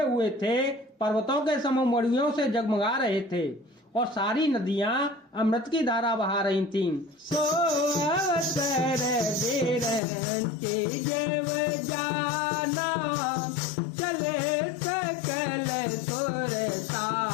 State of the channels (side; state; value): right; drops out; at 10.0 s